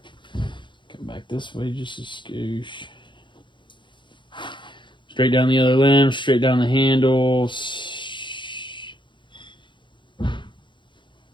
Come back this way just a skoosh. Straight down the other limb, straight down the handles.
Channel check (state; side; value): late; right; 0.23 ms